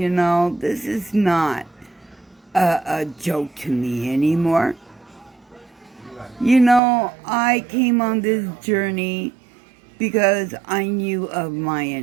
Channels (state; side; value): drops out; left; at 6.8 s